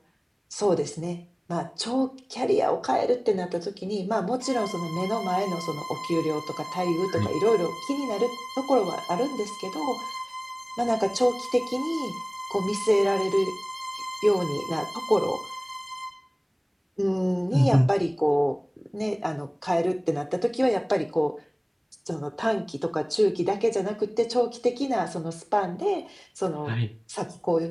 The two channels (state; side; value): identical; both; correlation 1.00